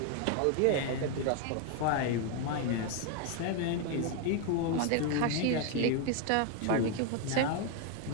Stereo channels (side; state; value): both; different; correlation 0.01